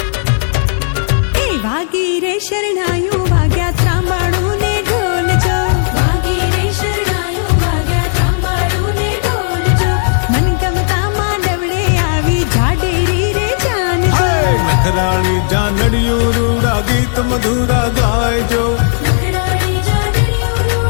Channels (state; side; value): silent; right; digital silence